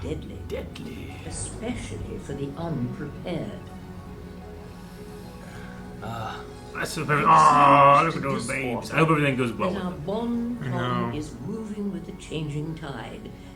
deadly. Deadly. Especially for the unprepared. That's the perfect. Oh, look at those babes. I hope everything goes well That with our them. bon I ton know. is moving with the changing tide,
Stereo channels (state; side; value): identical; both; correlation 1.00